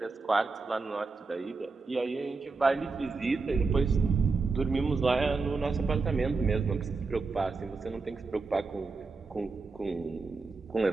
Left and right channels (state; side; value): quieter; left; 4.1 dB